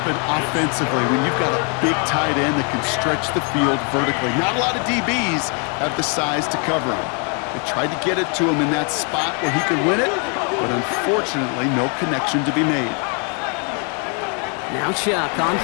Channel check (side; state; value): right; quieter; 37.1 dB